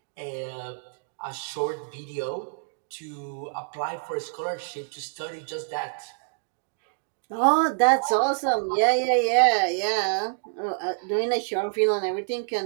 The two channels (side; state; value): left; silent; digital silence